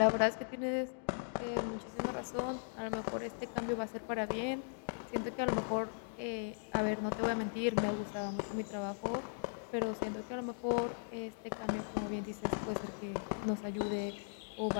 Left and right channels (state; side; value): silent; right; digital silence